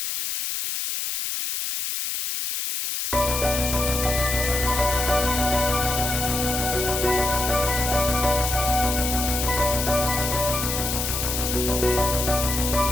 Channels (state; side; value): noise; left; hiss, 2 dB below the sound